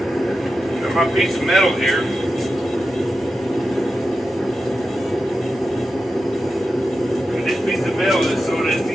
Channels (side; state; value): both; normal; correlation 0.91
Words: Got my piece of metal here. This piece of metal is so that